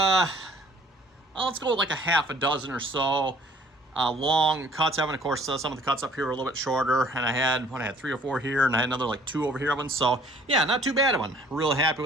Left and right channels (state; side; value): normal; both; correlation 0.56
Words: go with like a half a dozen or so long cuts. Of course, some of the cuts up here are a little bit shorter. And I had 3 or 4 here, and I had another like 2 over here of them. So yeah, not too bad of one. Really happy